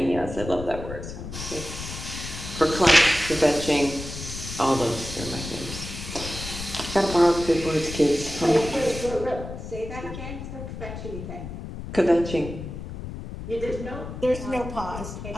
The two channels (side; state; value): left; noise; rumble, 9 dB below the sound